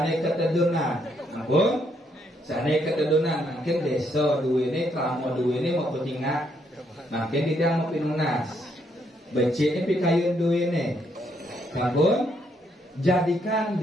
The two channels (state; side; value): normal; both; correlation 0.74